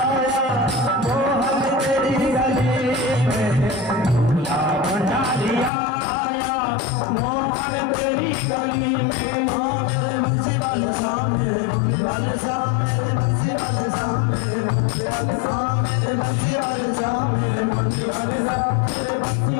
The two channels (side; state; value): right; drops out; at 5.7 s